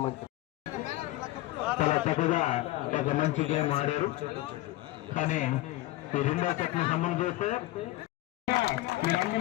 చాలా చక్కగా ఒక మంచి గేమ్ ఆడారు. కానీ ఈ రెండో సెట్ ని సంబంధం చేస్తే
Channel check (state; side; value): quieter; right; 17.3 dB